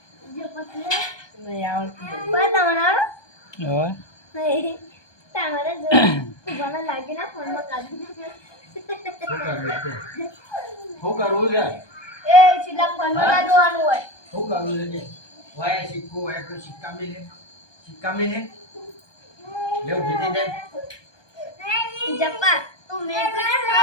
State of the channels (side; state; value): right; late; 1.2 ms